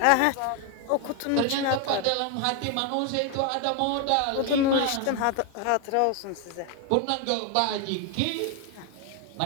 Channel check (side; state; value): both; different; correlation 0.01